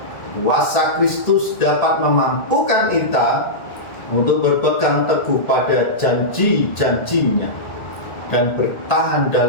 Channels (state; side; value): late; right; 1.8 ms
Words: kuasa Kristus dapat memampukan kita untuk berpegang teguh pada janji-janjinya dan bertahan